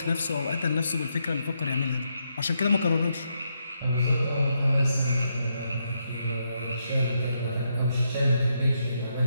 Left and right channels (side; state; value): both; inverted; correlation -0.80